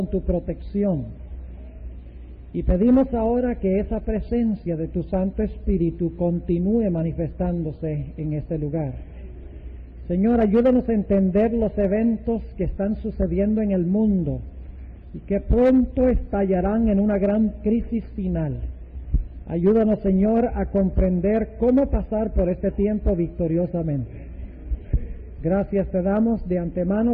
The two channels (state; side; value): identical; both; correlation 1.00